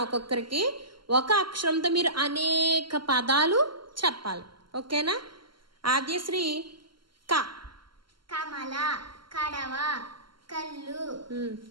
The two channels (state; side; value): late; left; 0.72 ms